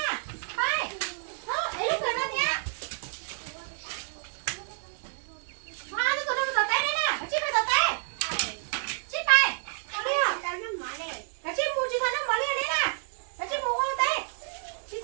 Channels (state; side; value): silent; left; 58 dB below the other